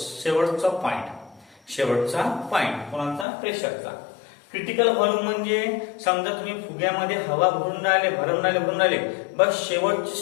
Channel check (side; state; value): right; drops out; at 3.2 s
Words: पॉइंट कोणाचा? प्रेशरचा. क्रिटिकल व्हॉल्यूम म्हणजे समजा तुम्ही फुग्यामध्ये हवा भरून राहिले बस शेवटची